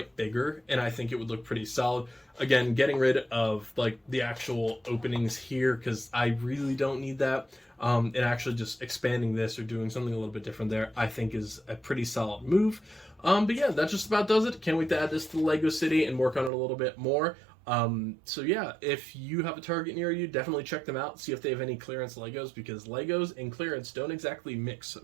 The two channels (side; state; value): left; drops out; at 16.5 s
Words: bigger, and I think it would look pretty solid. Again, getting rid of like the actual openings here, because I really don't need that. And actually just expanding this or doing something a little bit different there, I think is a pretty solid move. But yeah, that just about does it. Can't wait to add this to the Lego City and work on it a little bit more. So yeah, if you have a Target near you, definitely check them out, see if they have any clearance Legos, because Legos and clearance don't exactly mix